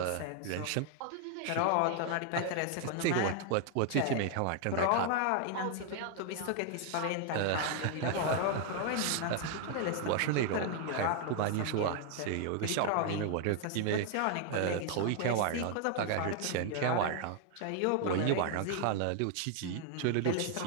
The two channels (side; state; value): both; different; correlation 0.00